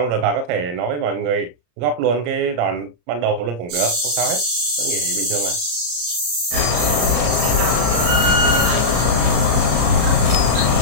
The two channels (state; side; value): late; left; 34 ms